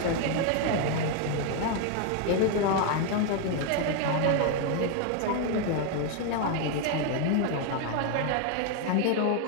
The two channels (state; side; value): different; both; correlation 0.01